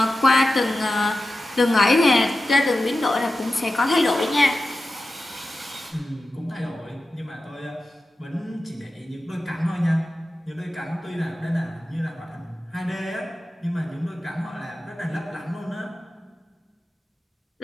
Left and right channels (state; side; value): normal; both; correlation 0.92